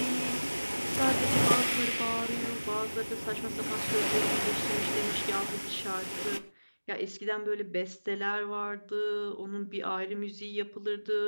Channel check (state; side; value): inverted; both; correlation -1.00